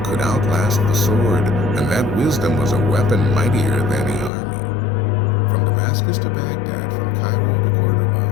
could outlast the sword, and that wisdom was a weapon mightier than any army. From Damascus to Baghdad, from Cairo to Cordoba,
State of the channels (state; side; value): drops out; right; at 4.3 s